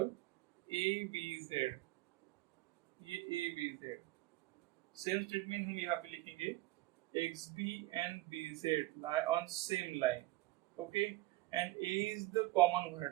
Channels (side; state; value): left; quieter; 18.3 dB